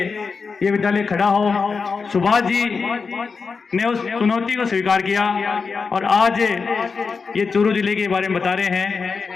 ये विद्यालय खड़ा हो। सुभाष जी ने उस चुनौती को स्वीकार किया और आज ये चूरू जिले के बारे में बता रहे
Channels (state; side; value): quieter; right; 5.0 dB